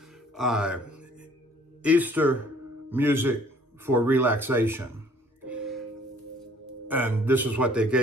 Easter music for relaxation. And this is what they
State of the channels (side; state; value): both; normal; correlation 0.57